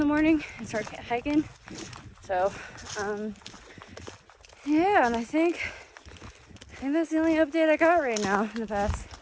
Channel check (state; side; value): identical; both; correlation 1.00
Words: morning and start hiking. So yeah, and I think that's the only update I got right now in the past